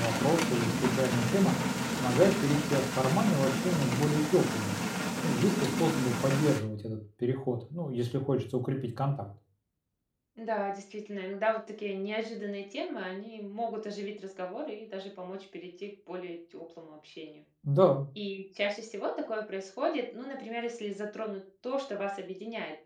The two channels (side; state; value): both; identical; correlation 1.00